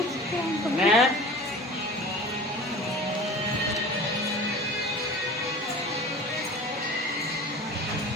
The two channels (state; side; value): normal; both; correlation 0.38